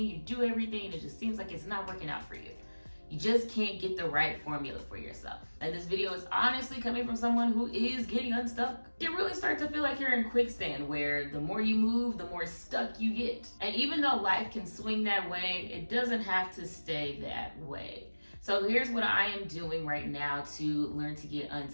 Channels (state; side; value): inverted; both; correlation -1.00